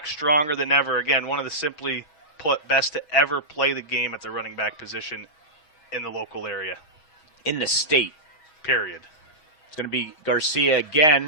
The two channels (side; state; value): right; late; 6.3 ms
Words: stronger than ever. Again, one of the simply put best to ever play the game at the running back position in the local area. In the state. Period. It's going to be Garcia